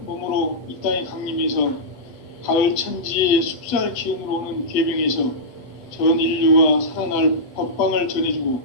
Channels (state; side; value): late; right; 8.2 ms